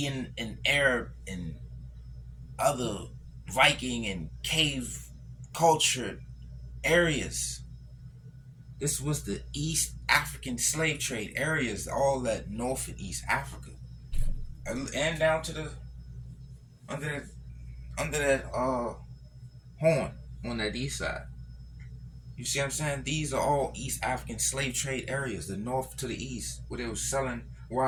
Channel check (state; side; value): identical; both; correlation 1.00